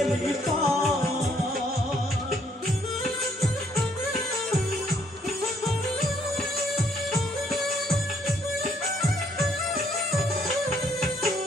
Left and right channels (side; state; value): both; normal; correlation 0.68